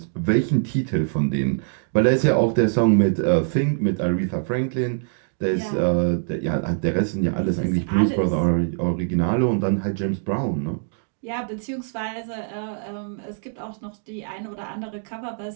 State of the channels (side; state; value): left; silent; digital silence